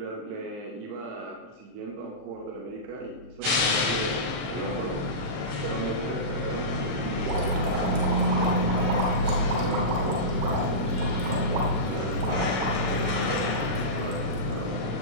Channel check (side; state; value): left; late; 36 ms